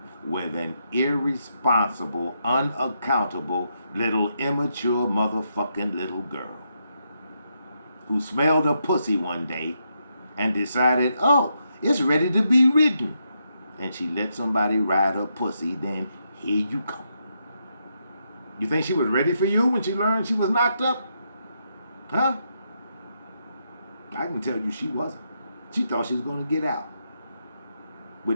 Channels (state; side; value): inverted; both; correlation -0.80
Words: with an irresponsible, unaccountable, little immature motherfucking little girl who smelled a pussy one day and decided, oh, it's ready to be ridden. And she let somebody ride her pussy, then here you come. You think she was ready for you when she learned she was knocked up? Huh? I can tell you she wasn't. She thought she was going to get out